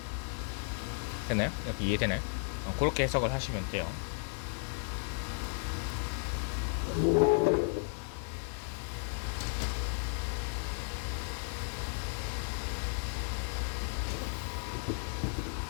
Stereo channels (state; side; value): silent; right; 55 dB below the other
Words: 됐나요? 이렇게 이해되나요? 그렇게 해석을 하시면 돼요.